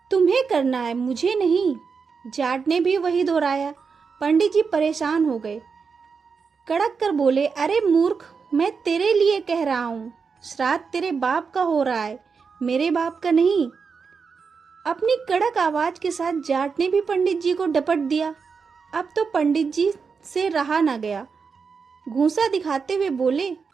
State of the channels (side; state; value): left; quieter; 5.5 dB